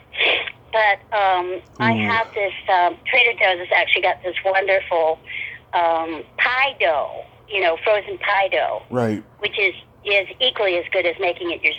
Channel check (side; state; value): both; identical; correlation 1.00